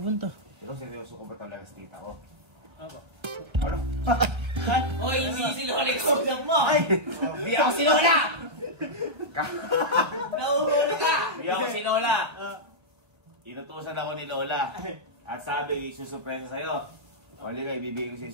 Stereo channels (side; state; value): left; late; 1.4 ms